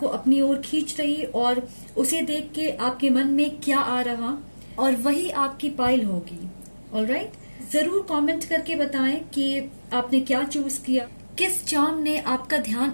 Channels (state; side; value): inverted; both; correlation -1.00